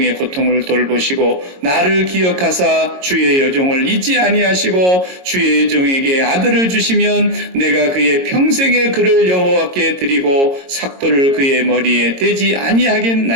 고통을 돌보시고 나를 기억하사 주의 여종을 잊지 아니하시고 주의 여종에게 아들을 주시면 내가 그의 평생의 그를 여호와께 드리고 삭도를 그의 머리에 대지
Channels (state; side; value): late; left; 22 ms